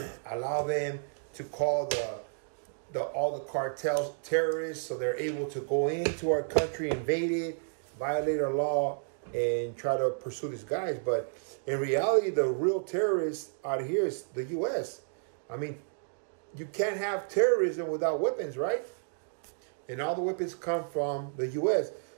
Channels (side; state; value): left; silent; digital silence